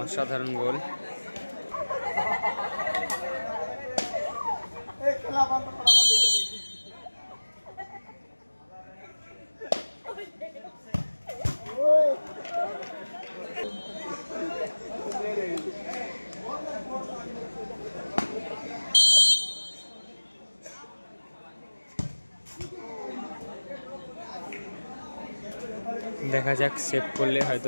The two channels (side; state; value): both; inverted; correlation -1.00